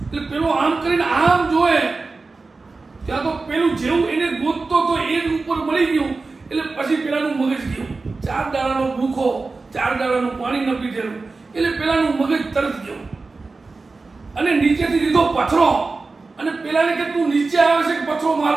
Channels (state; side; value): quieter; left; 3.8 dB